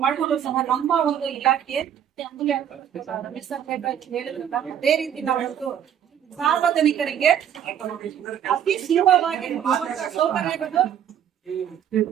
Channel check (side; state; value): left; quieter; 9.5 dB